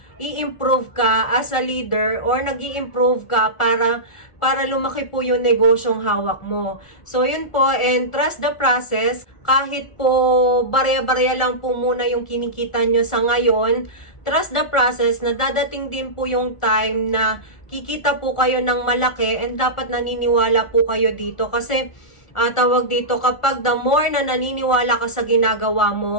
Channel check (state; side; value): late; right; 1.5 ms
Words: ka as a leader or nag-i-improve ka para lumaki po yung negosyong hawak mo. So yun po, and trust the process. Kahit po barya-barya lang po muna yung kinikita nyo sa ngayon, trust the process na dadating din po yung time na kikita po kayo ng malaki, and dapat naniniwala po kayo dito kasi tawag dito, kapag the more na naniniwala ka sa ginagawa